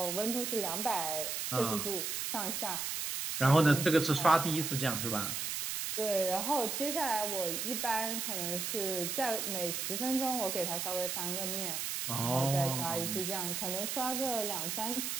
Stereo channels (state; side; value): noise; right; hiss, 2 dB below the sound